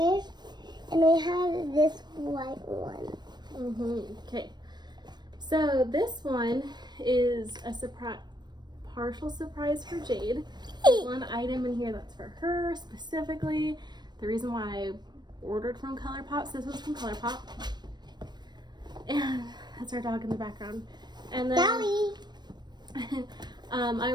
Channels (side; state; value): left; late; 0.21 ms